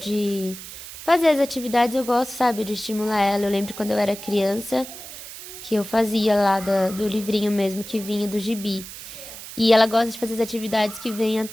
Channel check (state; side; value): noise; right; hiss, 13 dB below the sound